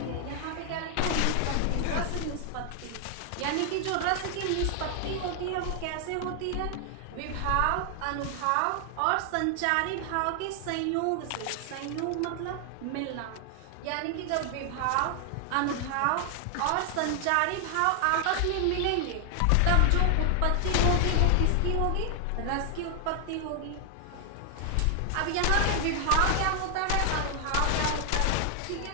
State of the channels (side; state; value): both; different; correlation 0.00